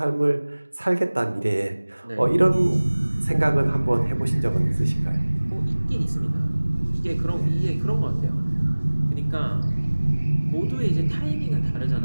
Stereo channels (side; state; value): both; inverted; correlation -1.00